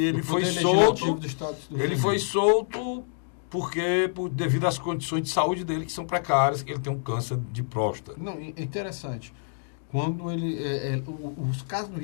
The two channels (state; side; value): silent; right; digital silence